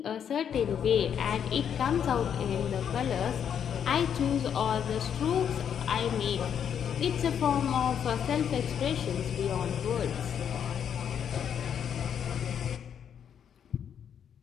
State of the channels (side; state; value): right; quieter; 8.3 dB